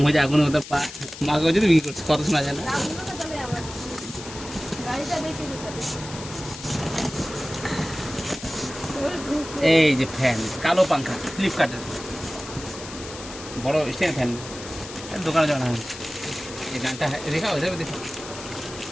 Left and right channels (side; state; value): left; noise; hiss, 13 dB below the sound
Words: হয়ে যায় আগুনের মতো মাকে বলছি তো বিক্রি করছি, কত শোনা যায় না। লাগলো না তাহলে আমার গাড়িটা বেঁচে দিতে হবে। এই যে ফ্যান, কালো পাঙ্খা ফ্লিপকার্টের বড় স্ট্যান্ড ফ্যান, দোকানে যাওয়া না। এই গানটা দেখাও, এভাবে দেখো